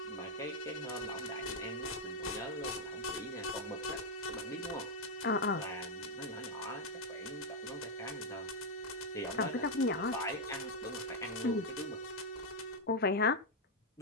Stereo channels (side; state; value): both; normal; correlation -0.01